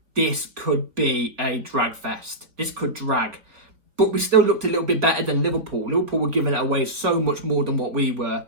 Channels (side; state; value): left; late; 4.3 ms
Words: this could be a drag fest. This could drag. but we still looked a little bit better than Liverpool. Liverpool were giving it away so much more than what we were,